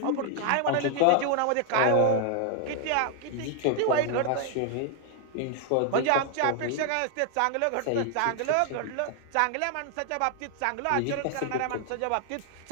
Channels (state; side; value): different; both; correlation 0.00